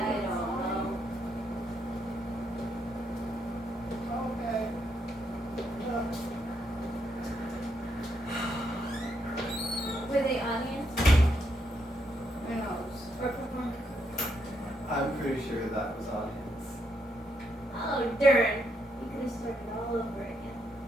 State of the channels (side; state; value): both; normal; correlation 0.77